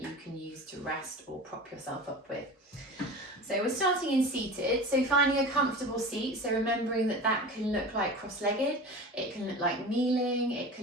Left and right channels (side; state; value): both; normal; correlation 0.33